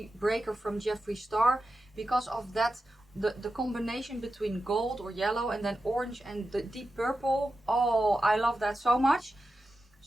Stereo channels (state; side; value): normal; both; correlation 0.91